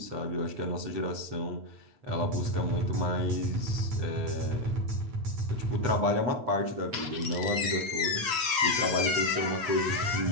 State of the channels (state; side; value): late; left; 8.4 ms